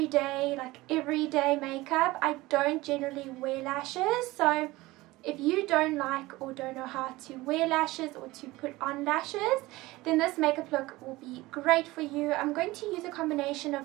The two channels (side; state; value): left; quieter; 19.7 dB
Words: makeup, I don't generally wear lashes. So if you don't like or don't know how to wear lashes or to put on lashes, then this makeup look will be great for you. I'm going to use a combination of